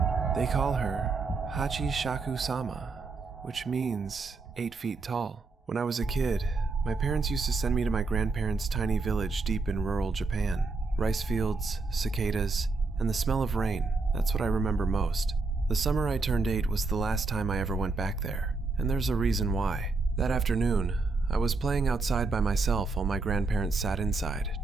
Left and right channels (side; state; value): left; quieter; 3.9 dB